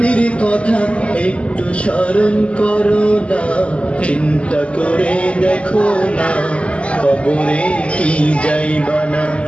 কথা একটু স্মরণ করো না। চিন্তা করে দেখো না কবরে কি যাইবা না,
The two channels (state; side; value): late; right; 0.059 ms